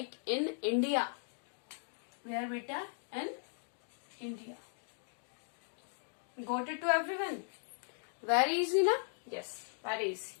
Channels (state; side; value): silent; right; digital silence